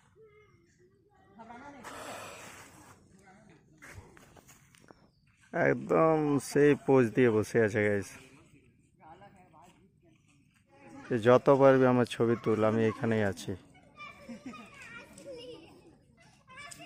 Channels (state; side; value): identical; both; correlation 1.00